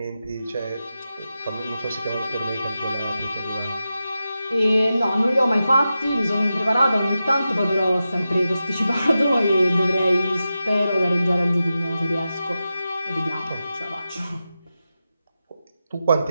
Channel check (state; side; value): inverted; both; correlation -0.91